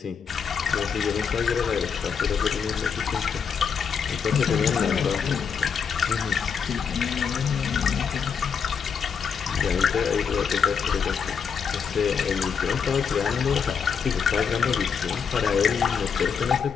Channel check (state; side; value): quieter; right; 6.5 dB